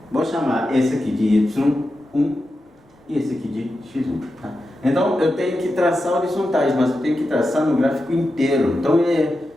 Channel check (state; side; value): normal; both; correlation 0.90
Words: Vou chamar esse aqui de Y1 e esse aqui de X1. Tá? Então eu tenho que traçar horizontais, mas eu tenho que traçar no gráfico inteiro. Então é